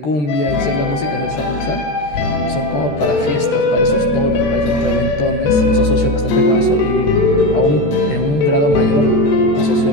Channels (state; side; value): late; right; 14 ms